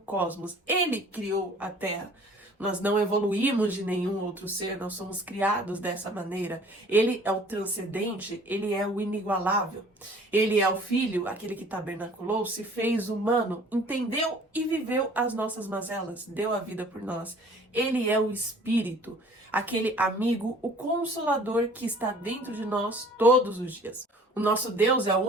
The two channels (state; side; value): normal; both; correlation 0.51